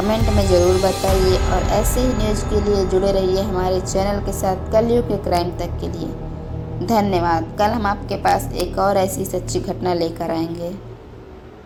में ज़रूर बताइए और ऐसे ही न्यूज़ के लिए जुड़े रहिए हमारे चैनल के साथ कलयुग के क्राइम तक के लिए। धन्यवाद। कल हम आपके पास एक और ऐसी सच्ची घटना लेकर आएंगे।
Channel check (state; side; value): identical; both; correlation 1.00